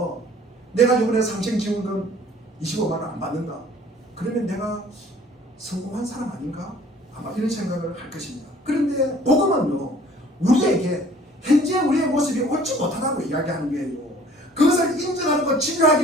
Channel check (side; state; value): both; normal; correlation 0.52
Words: 내가 이번에 상생지원금 25만 원 안 받는다. 그러면 내가 성공한 사람 아닌가? 아마 이런 생각을 할 것입니다. 그런데 복음은요, 우리에게 현재 우리의 모습이 옳지 못하다고 이야기하는 거예요. 그것을 인정하고